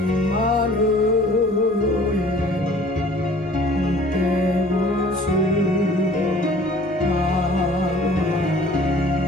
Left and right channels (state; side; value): noise; right; hum, 23 dB below the sound